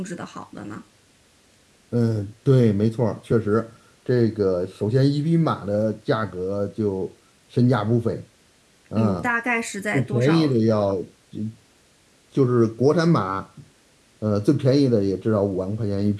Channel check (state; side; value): identical; both; correlation 1.00